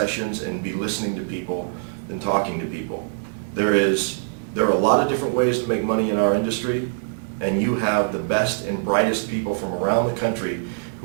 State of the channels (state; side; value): silent; left; digital silence